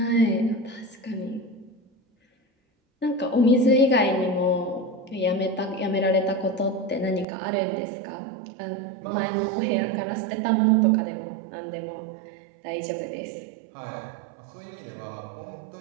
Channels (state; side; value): drops out; left; at 7.2 s